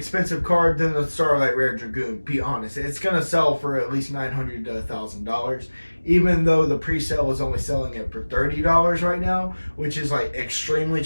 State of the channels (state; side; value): inverted; both; correlation -1.00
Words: card than the Starlight Rare Dragoon. Be honest, it's gonna sell for at least $900 to $1,000, even though the pre-sale is only selling it for $30 right now, which is like extremely